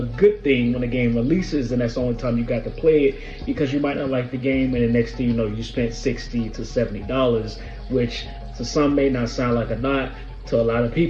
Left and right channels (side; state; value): both; identical; correlation 1.00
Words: good thing when a game releases and that's the only time you got to play it, because you might not like the game and the next thing you know you spent $60 to $70, which to some may not sound like a lot. To a lot of